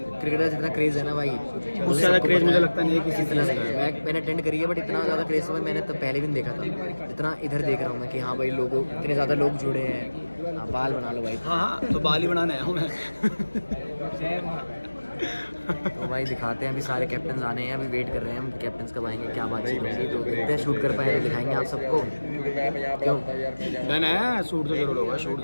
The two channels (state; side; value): inverted; both; correlation -1.00